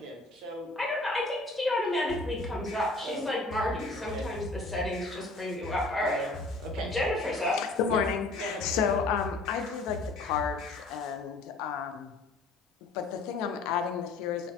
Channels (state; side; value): quieter; right; 3.2 dB